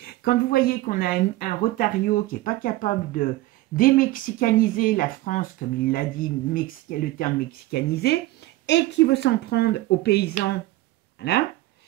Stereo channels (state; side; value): quieter; left; 17.8 dB